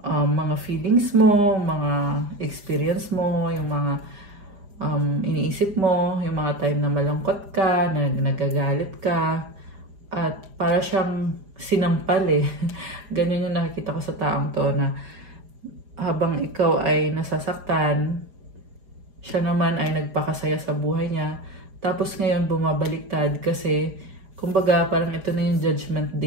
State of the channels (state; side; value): late; left; 4.9 ms